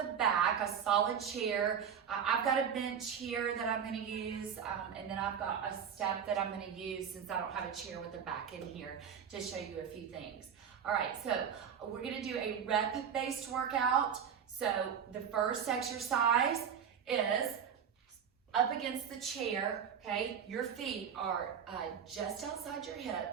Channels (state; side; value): quieter; left; 7.7 dB